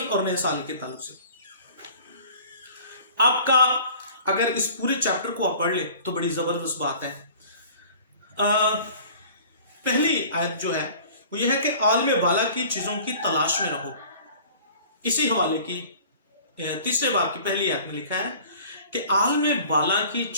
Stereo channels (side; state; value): both; inverted; correlation -0.46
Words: اور نئے سال کے تعلق سے. آپ کا اگر اس پورے چیپٹر کو آپ پڑھ لیں تو بڑی زبردست بات ہے. پہلی آیت جو ہے وہ یہ ہے کہ عالم بالا کی چیزوں کی تلاش میں رہو. اسی حوالے کی تیسرے باب کی پہلی آیت میں لکھا ہے کہ عالم بالا کی